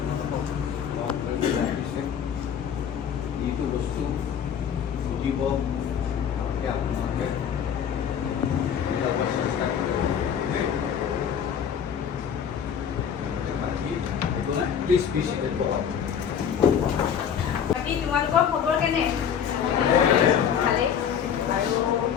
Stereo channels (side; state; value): right; quieter; 8.2 dB